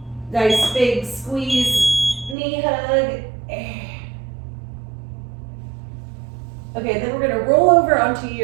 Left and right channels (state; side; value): drops out; left; at 2.4 s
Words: Nice big squeeze, knee hug. Okay, then we're gonna roll over onto